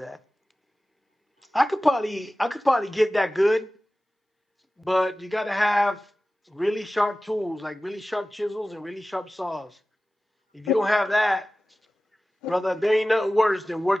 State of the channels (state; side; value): normal; both; correlation 0.96